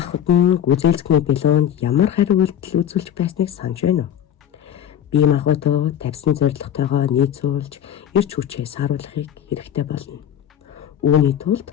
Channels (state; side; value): quieter; right; 10.0 dB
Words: нь гүйцэлцэхний билоонд ямар хариу үйлдэл үзүүлж байсныг санаж байна уу? Бие махбодоо тавьсан зорилготойгоо нийцүүлж эрч хүчээ сааруулахыг хэрэгтэй болно. Үүний тулд